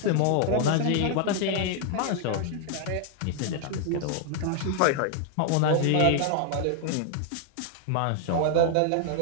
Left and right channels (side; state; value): both; different; correlation 0.00